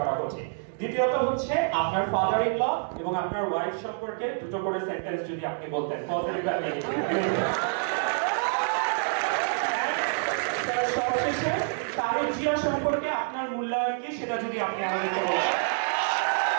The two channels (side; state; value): left; silent; digital silence